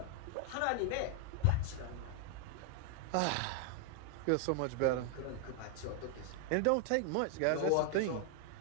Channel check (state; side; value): different; both; correlation 0.00